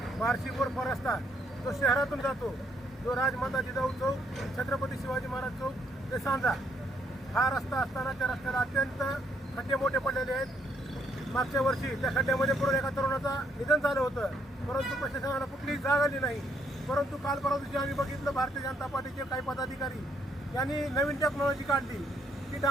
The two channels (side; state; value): both; normal; correlation 0.71